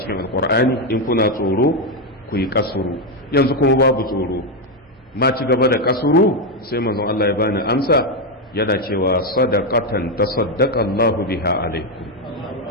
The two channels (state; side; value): normal; both; correlation 0.06